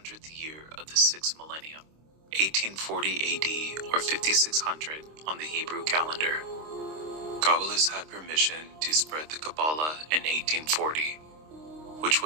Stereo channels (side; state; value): left; late; 26 ms